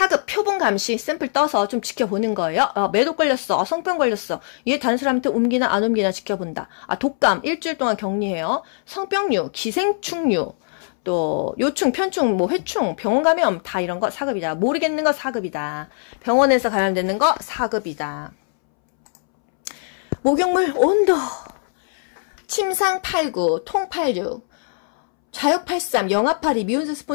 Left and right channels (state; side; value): silent; right; 65 dB below the other